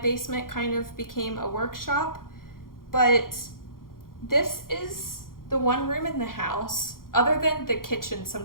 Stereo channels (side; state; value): right; late; 0.91 ms